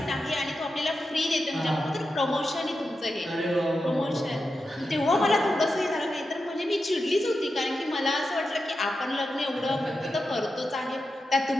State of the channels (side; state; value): both; normal; correlation 0.89